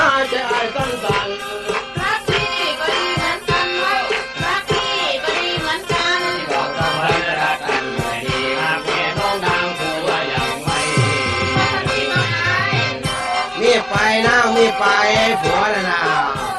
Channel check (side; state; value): both; identical; correlation 1.00